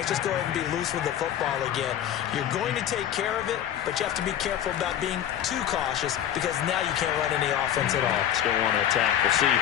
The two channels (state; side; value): quieter; right; 10.5 dB